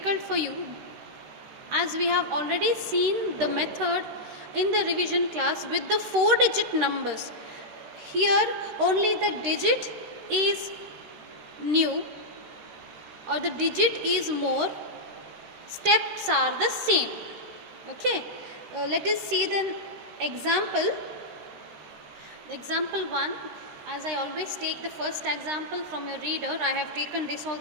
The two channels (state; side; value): late; left; 13 ms